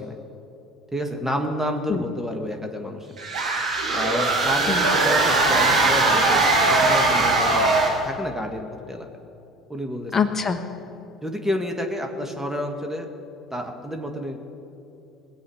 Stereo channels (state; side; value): normal; both; correlation 0.42